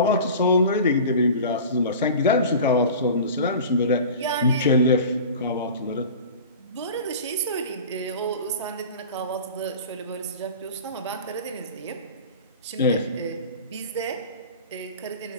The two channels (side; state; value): both; inverted; correlation -0.37